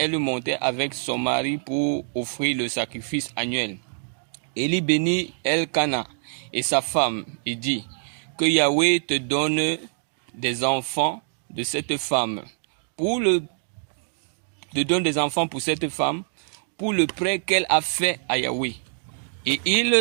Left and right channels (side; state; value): left; silent; 62 dB below the other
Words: montait avec son mari pour offrir le sacrifice annuel. Élie bénit Elkana et sa femme et dit, que Yahweh te donne des enfants de cette femme. Donne des enfants pour cette femme, pour le prêt qu'elle a fait à Yahweh. Et